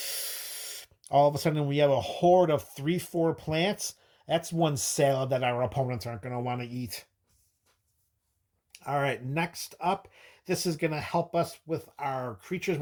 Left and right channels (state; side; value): identical; both; correlation 1.00